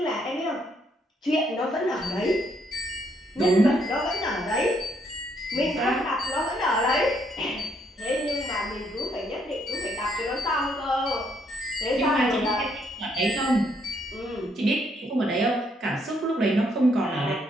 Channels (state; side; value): normal; both; correlation 0.72